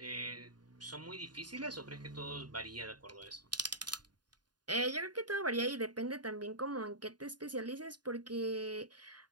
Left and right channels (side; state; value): left; late; 0.70 ms